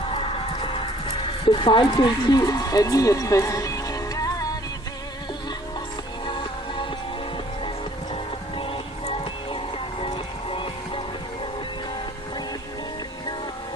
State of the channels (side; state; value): both; normal; correlation 0.57